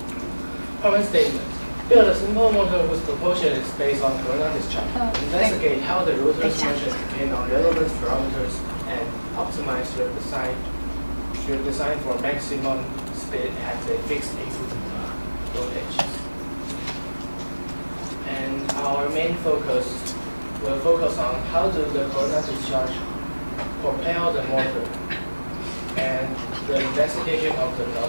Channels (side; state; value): both; inverted; correlation -1.00